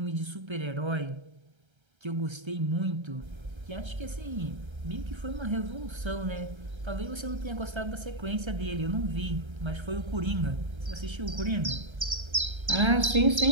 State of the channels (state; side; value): late; left; 1.3 ms